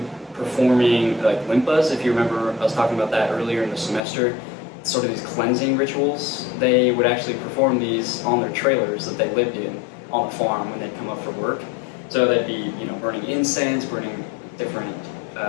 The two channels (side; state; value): right; drops out; at 4.0 s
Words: performing like limpas. If you remember, I was talking about that earlier in the semester, sort of these cleansing rituals. They would actually perform these on their trailers that they lived in on the farm when they'd come up for work. So they'd be, burning incense, burning different